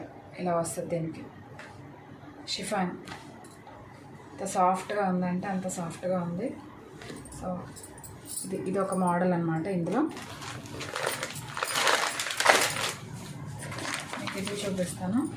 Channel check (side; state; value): both; identical; correlation 1.00